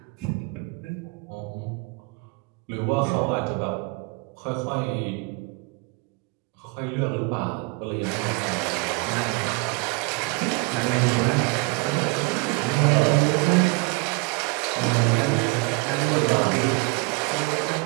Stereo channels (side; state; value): left; quieter; 27.6 dB